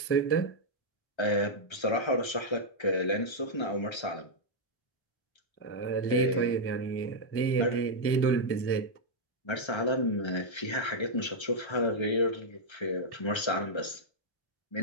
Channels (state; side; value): late; right; 1.3 ms